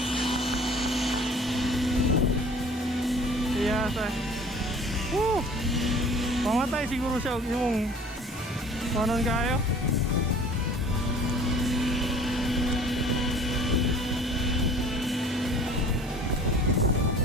Iya sa. Pamatay siguro siya yung kanon kayo.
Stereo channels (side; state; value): both; normal; correlation 0.48